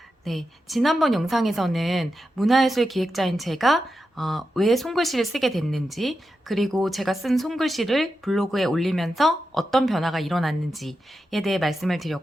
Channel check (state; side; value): normal; both; correlation 0.89